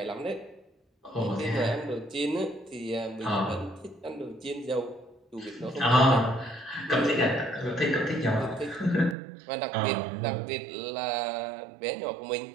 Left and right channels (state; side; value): drops out; left; at 9.2 s